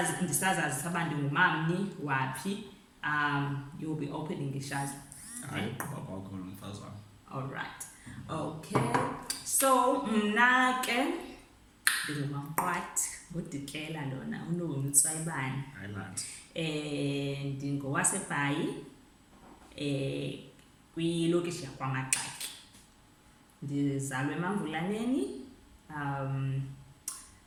ndisazazi uba ndingumamni waphi, you'll be opening ishazi. Hayi gqiba kwakho lo mfazi wam. All right. Okay. So mna ke ndingumamqwathi ngudikela lona unoni utswayibani. Highland. NdingowaseBhayi kwilokishi yakwaMagxaki. Ndizalwe eMamvulaneni.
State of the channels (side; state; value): both; identical; correlation 1.00